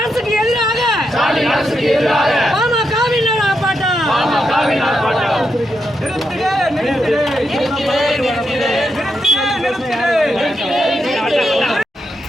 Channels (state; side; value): normal; both; correlation 0.84